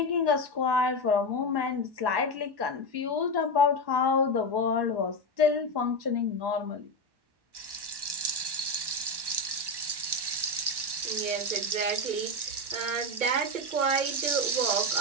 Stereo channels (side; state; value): left; late; 1.1 ms